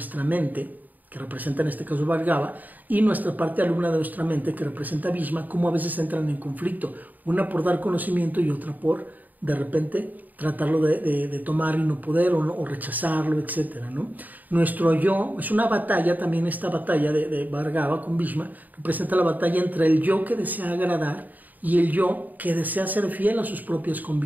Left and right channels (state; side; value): late; left; 0.083 ms